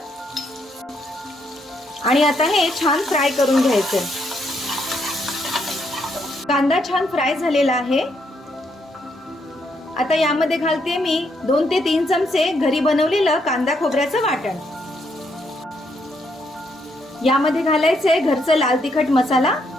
आणि आता हे छान फ्राय करून घ्यायचं। कांदा छान फ्राय झालेला आहे। आता यामध्ये घालते मी 2 ते 3 चमचे घरी बनवलेलं कांदा खोबऱ्याचं वाटण। यामध्ये घालायचे घरचं लाल तिखट मसाला,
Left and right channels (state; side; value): normal; both; correlation 0.75